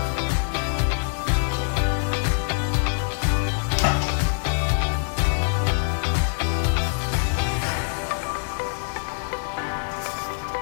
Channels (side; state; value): right; silent; digital silence